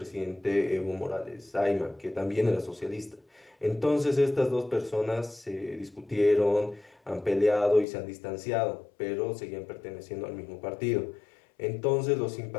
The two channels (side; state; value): right; drops out; at 7.9 s